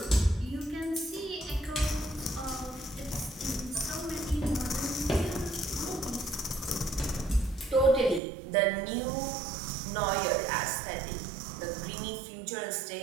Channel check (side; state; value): left; drops out; at 8.2 s